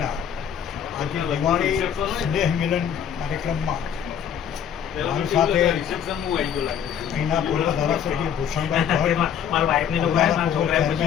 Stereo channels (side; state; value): right; quieter; 8.6 dB